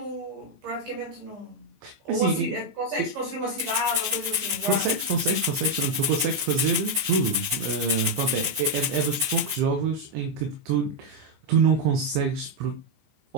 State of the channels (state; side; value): late; left; 14 ms